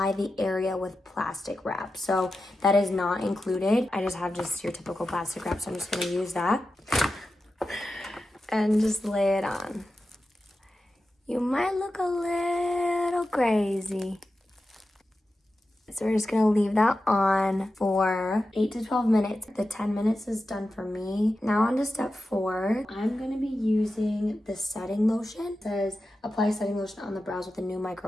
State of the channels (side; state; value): both; normal; correlation 0.92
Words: the area with plastic wrap. So that is not included. I just have your typical plastic wrap, so I'm just gonna use that and just lay it on. You might look a little crazy. So we're just gonna leave that on for 8 to 12 minutes. The 10 minutes is done for me. Now on to step 4. I'm gonna be using the setting lotion. It says apply setting lotion on the brows with a new